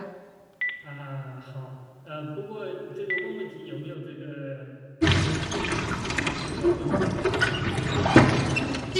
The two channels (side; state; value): both; identical; correlation 1.00